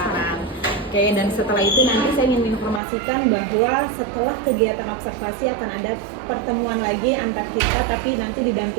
Oke, dan setelah itu nanti saya ingin menginformasikan bahwa setelah kegiatan observasi akan ada pertemuan lagi antar kita, tapi nanti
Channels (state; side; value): drops out; left; at 2.8 s